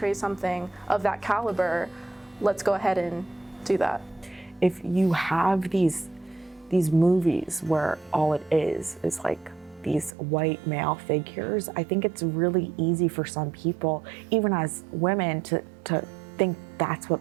something of that caliber, let's go ahead and do that. If you have these movies where all it is like these white male figures, I think it's really easy for some people, even as women, to think that's what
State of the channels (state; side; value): drops out; left; at 10.1 s